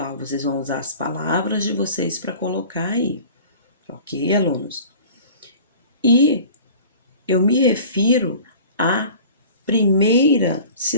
Vocês vão usar as palavras de vocês para colocar aí, ok, alunos? E eu me refiro à primeira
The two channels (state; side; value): inverted; both; correlation -0.43